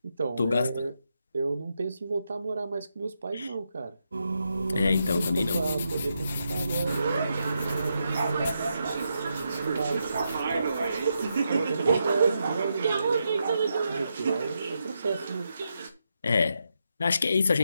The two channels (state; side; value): inverted; both; correlation -0.83